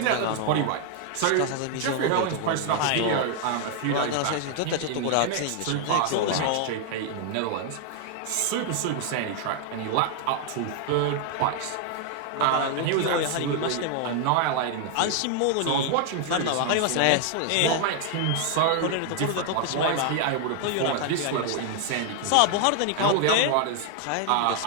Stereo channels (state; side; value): different; both; correlation 0.00